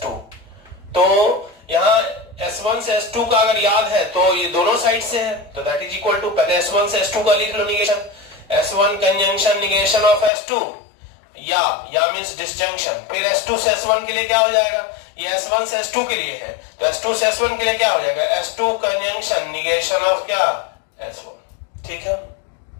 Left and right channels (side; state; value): right; drops out; at 10.3 s